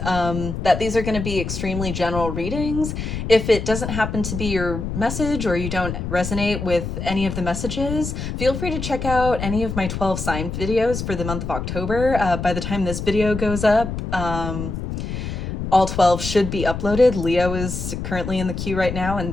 that these are going to be extremely general readings. If it doesn't happen to be your message or you don't resonate with any of the messages, feel free to check out any of my 12 sign videos for the month of October. By the time this video goes up, all 12 should be uploaded. Leo is currently in the queue right now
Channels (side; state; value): left; noise; rumble, 5 dB below the sound